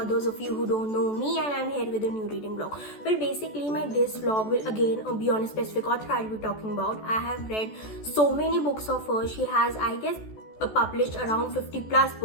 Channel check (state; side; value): late; right; 14 ms